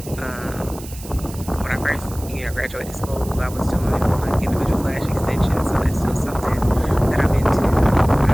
When I first, graduated school, I was doing like individual lash extensions, so that's still something that I'm into. I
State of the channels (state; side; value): noise; right; hiss, 16 dB below the sound